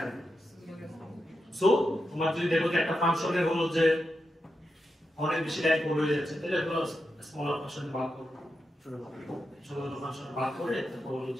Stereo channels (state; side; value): normal; both; correlation 0.88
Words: সো তোমার যদি দেখো যে একটা ফাংশনে হলো যে অনেক বেশি লাইন পড়ে হয়ে যাচ্ছে তাহলে হলো স্মলার ফাংশন ভাগ করো ছোট ছোট ফাংশন ভাগ করে তারপর হলো